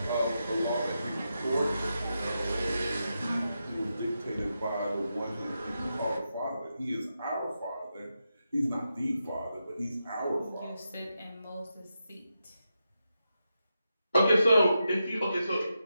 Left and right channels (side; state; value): both; inverted; correlation -0.87